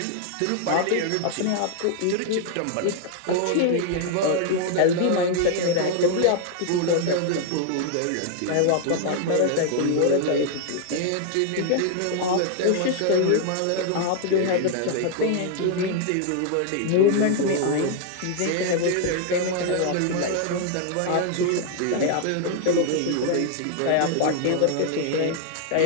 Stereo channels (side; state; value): both; different; correlation 0.00